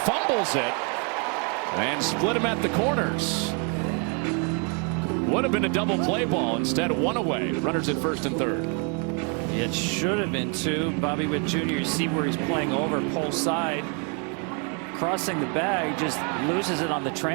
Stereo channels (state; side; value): quieter; left; 37.2 dB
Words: it. And split him at the corners. Would have been a double play ball. Instead, 1 away. Runners at first and third. It should have been 2. Bobby Witt Jr., you see where he's playing over, pole side. Crossing the bag, just loses it on the